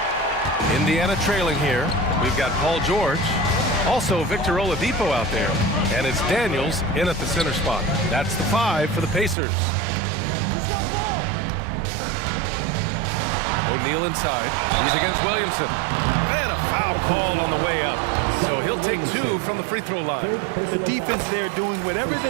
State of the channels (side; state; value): left; drops out; at 9.3 s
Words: Indiana trailing here. We've got Paul George. Also Victor Oladipo out there. And it's Daniels in at the center spot. That's the 5 for the Pacers. O'Neal inside. He's against Williamson. And a foul called on the way up. So he'll take 2 from the free throw line. The defense there doing whatever